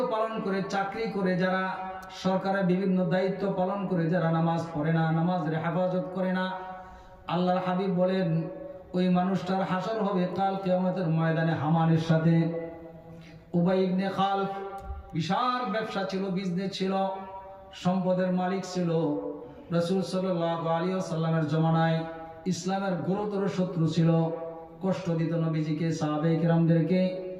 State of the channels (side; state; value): both; identical; correlation 1.00